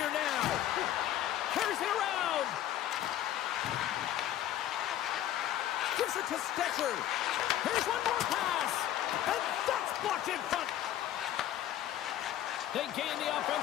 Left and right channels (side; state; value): right; quieter; 12.3 dB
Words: now. Carries it around. Gives it to Stetcher. Here's one more pass. And that's blocked in front. They gain the